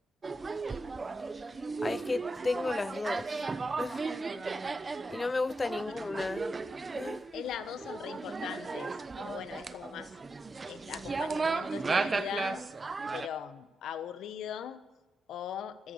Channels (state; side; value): normal; both; correlation 0.86